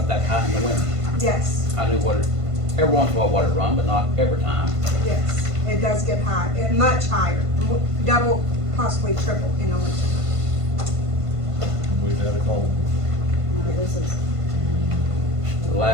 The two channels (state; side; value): late; left; 1.5 ms